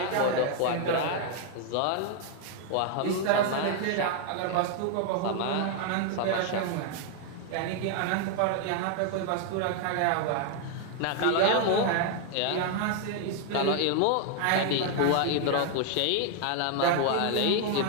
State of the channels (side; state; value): both; different; correlation 0.00